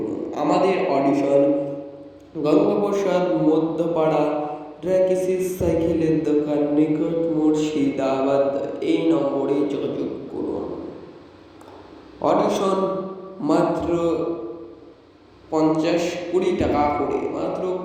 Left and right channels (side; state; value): both; identical; correlation 1.00